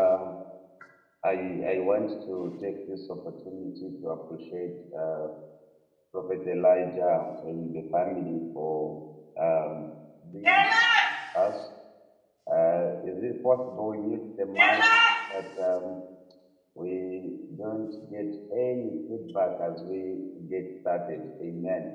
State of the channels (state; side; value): identical; both; correlation 1.00